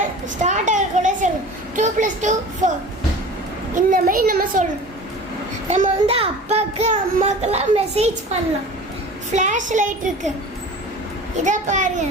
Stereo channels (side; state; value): both; normal; correlation 0.39